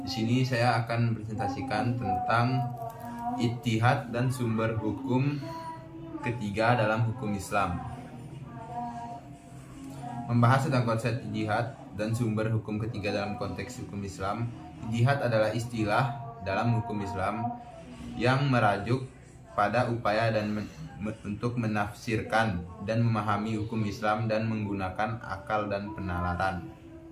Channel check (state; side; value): identical; both; correlation 1.00